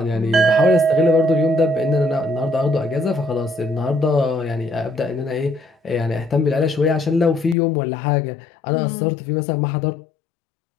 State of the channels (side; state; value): right; drops out; at 7.6 s